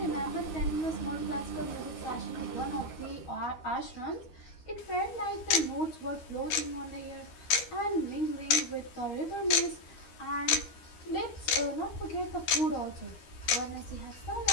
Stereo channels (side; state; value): right; late; 13 ms